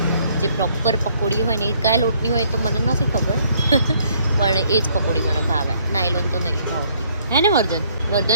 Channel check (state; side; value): inverted; both; correlation -0.65